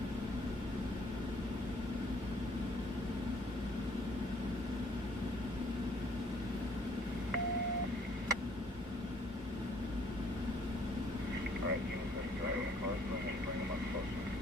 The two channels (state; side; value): normal; both; correlation 0.62